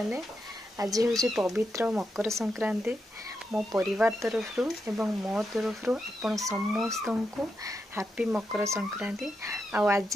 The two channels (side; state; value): both; normal; correlation 0.85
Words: आज हूँ पवित्र मकर संक्रांति मो परिवार तरफ एवं मो तरफ आपण समस्त को हैप्पी मकर संक्रांति।